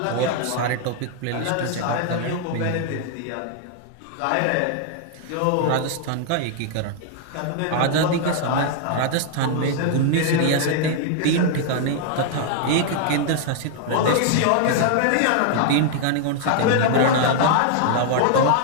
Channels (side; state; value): both; different; correlation 0.00